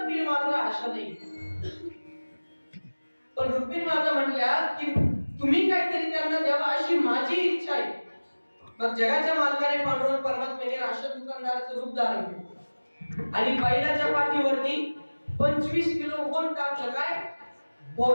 मात्र आशा नाही. पण रुक्मिणी माता म्हटल्या की तुम्ही काहीतरी त्यांना द्यावा अशी माझी इच्छा आहे. मग जगाच्या मालकाने पांडुरंग परमात्म्याने राशन दुकानदाराचं रूप धारण केलं आणि बैलाच्या पाठीवरती 25 किलो होन टाकलं. काय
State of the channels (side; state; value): both; inverted; correlation -1.00